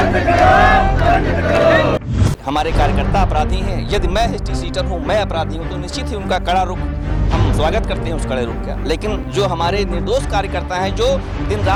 करो, बंद करो। हमारे कार्यकर्ता अपराधी हैं, यदि मैं हिस्ट्री सीटर हूँ, मैं अपराधी हूँ, तो निश्चित ही उनका कड़ा रुख हम स्वागत करते हैं उस कड़े रुख का। लेकिन जो हमारे निर्दोष कार्यकर्ता हैं जो दिन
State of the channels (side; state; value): both; identical; correlation 1.00